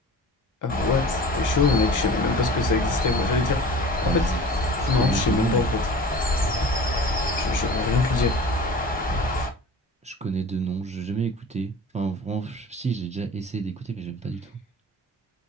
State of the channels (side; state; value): both; normal; correlation 0.40